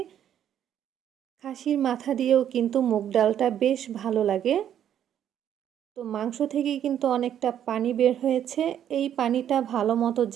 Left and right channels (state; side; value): quieter; left; 10.1 dB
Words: খাসির মাথা দিয়েও কিন্তু মুগ ডালটা বেশ ভালো লাগে। তো মাংস থেকে কিন্তু অনেকটা পানি বের হয়েছে, এই পানিটা ভালো মতো